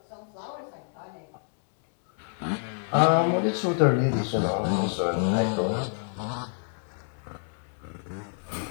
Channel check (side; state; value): right; silent; 60 dB below the other